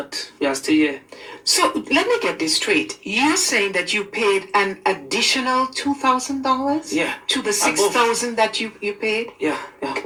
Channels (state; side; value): identical; both; correlation 1.00